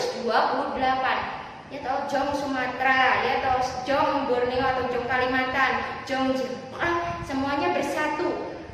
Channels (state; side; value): identical; both; correlation 1.00